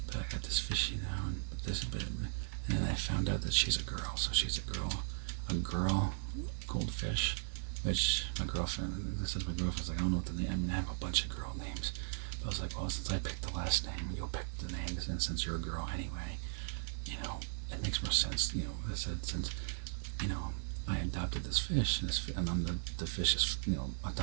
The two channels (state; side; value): silent; left; digital silence